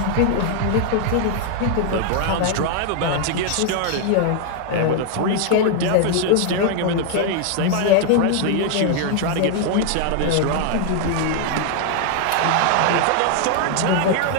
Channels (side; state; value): both; different; correlation 0.00